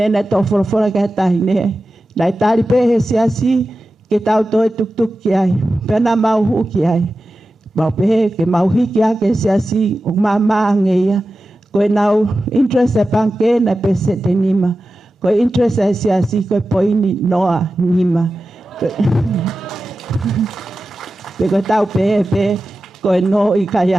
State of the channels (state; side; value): normal; both; correlation 0.93